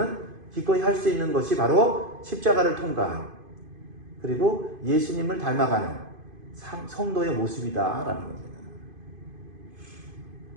기꺼이 할 수 있는 것이 바로 십자가를 통과하는 그리고 예수님을 닮아가는 성도의 모습이다라는 겁니다.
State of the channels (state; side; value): late; left; 2.5 ms